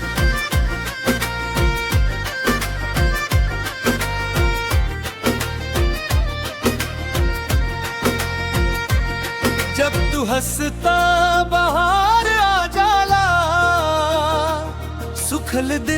जब तू हंसता बाहर आ जाला, सुखल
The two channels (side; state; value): both; identical; correlation 1.00